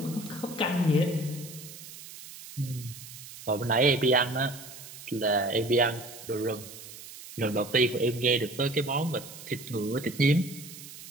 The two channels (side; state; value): right; noise; hiss, 15 dB below the sound